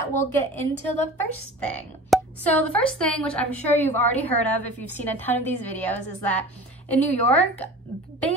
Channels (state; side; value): normal; both; correlation 0.38